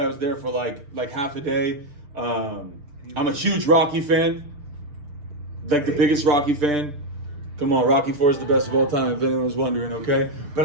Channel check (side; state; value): left; late; 6.8 ms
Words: was there for like half a day. I'm a huge Rocky fan. Like the biggest Rocky fan. Come on, Rocky IV is the best of all time, if anyone was wondering, okay?